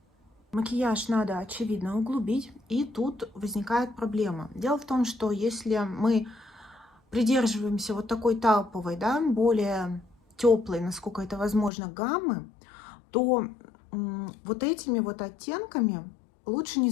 Макияж надо, очевидно, углубить. И тут возникает проблема. Дело в том, что если мы придерживаемся вот такой тауповой, да, более теплой, насколько это возможно, гаммы, то вот этими вот оттенками лучше не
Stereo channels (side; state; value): right; drops out; at 11.7 s